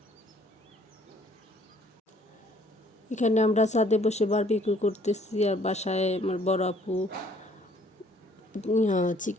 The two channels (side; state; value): both; normal; correlation 0.61